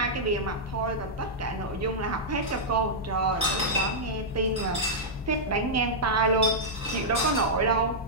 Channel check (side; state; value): both; normal; correlation -0.08